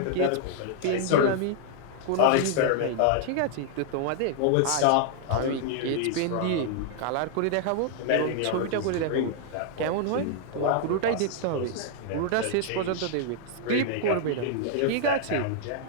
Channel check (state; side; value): different; both; correlation -0.01